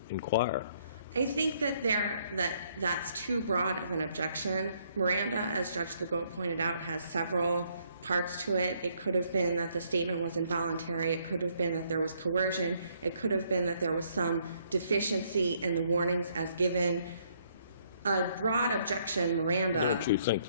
inquire? I think that that's too broad of an objection. Miranda, as Judge Legault pointed out, has several parts to it. It could have been that the statement was involuntary. It could have been that there was coercion. It could have been that there was some deficiency in the warnings as given. A broad objection, Miranda. Don't you think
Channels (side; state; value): both; inverted; correlation -0.69